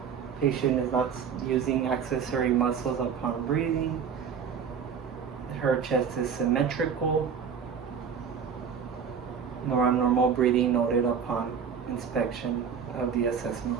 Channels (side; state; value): left; quieter; 6.9 dB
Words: Patient is not using accessory muscles upon breathing. Her chest is symmetrical. No abnormal breathing noted upon inspection of the